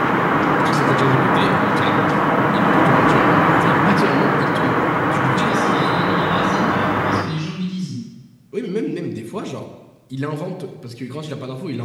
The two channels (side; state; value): both; identical; correlation 1.00